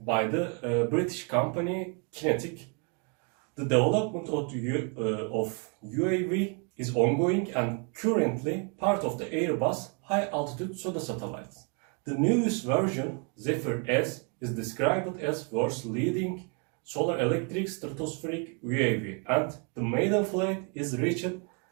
the British company Kinetic. The development of UAV is ongoing and currently part of the Airbus high-altitude pseudo satellites. The newest version, Zephyr S, is described as world's leading solar electric stratospheric UAV, and the maiden flight is reached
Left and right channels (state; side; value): quieter; left; 35.6 dB